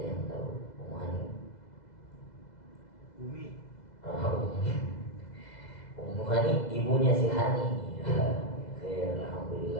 Hani ibunya si Hani. Ya,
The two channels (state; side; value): late; right; 2.0 ms